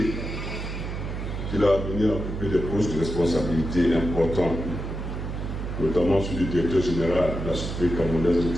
il a venu occuper des postes de responsabilité importants, notamment celui du directeur général de la Société camerounaise de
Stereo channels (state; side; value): noise; right; hum, 5 dB below the sound